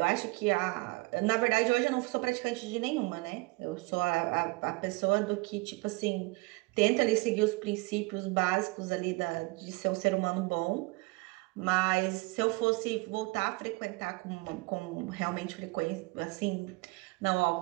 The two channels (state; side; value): quieter; left; 25.6 dB